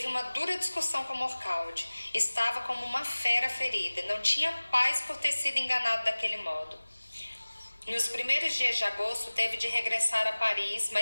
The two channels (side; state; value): both; inverted; correlation -1.00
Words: uma dura discussão com Morcaldi. Estava como uma fera ferida. Não tinha paz por ter sido enganado daquele modo. Nos primeiros dias de agosto, teve de regressar a Paris,